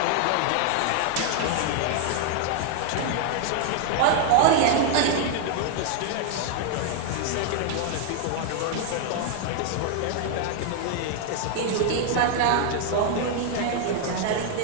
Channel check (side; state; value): both; different; correlation 0.00